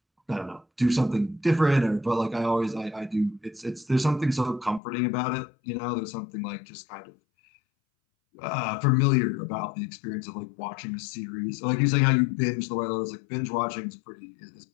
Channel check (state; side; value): drops out; right; at 4.8 s